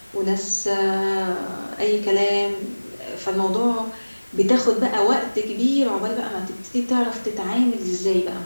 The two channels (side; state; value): both; inverted; correlation -1.00